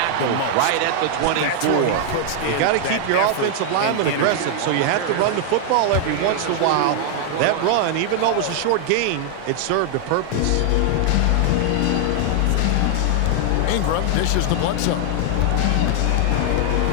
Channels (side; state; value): both; different; correlation 0.00